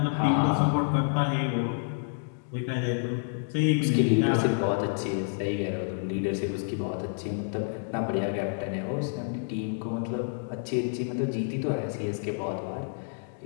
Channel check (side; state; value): right; silent; digital silence